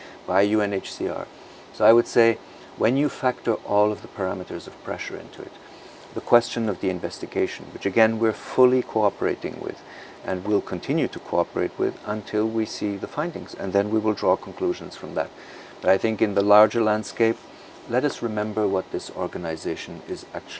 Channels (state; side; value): identical; both; correlation 1.00